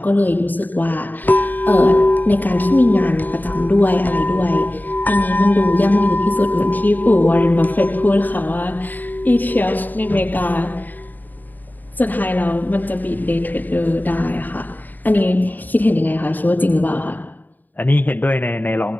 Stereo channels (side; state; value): right; late; 0.086 ms